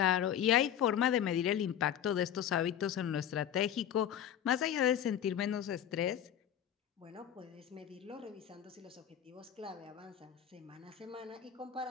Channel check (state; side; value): quieter; right; 9.8 dB